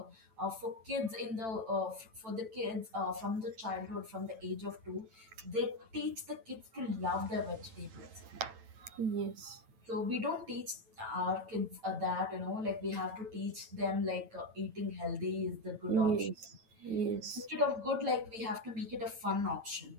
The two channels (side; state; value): left; late; 9.0 ms